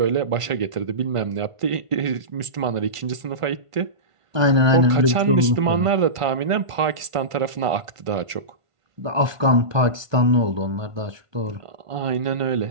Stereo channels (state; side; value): late; left; 1.5 ms